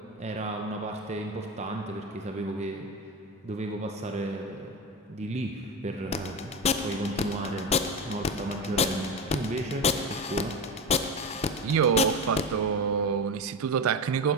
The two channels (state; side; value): normal; both; correlation 0.20